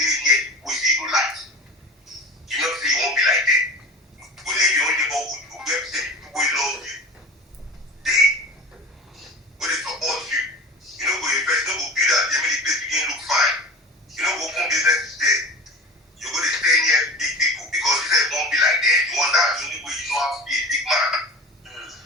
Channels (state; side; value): normal; both; correlation 0.35